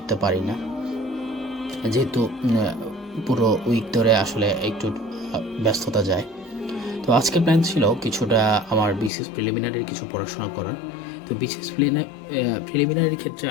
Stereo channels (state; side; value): drops out; right; at 9.1 s